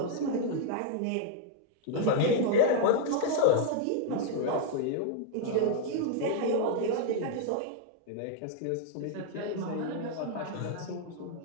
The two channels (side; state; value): both; different; correlation 0.00